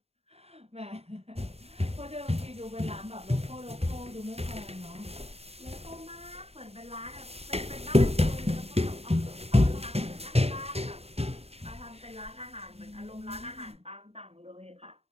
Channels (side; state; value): left; late; 0.30 ms